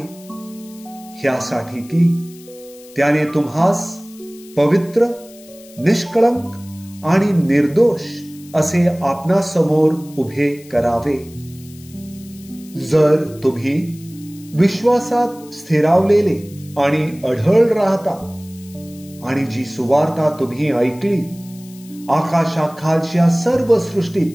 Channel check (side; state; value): left; noise; hiss, 23 dB below the sound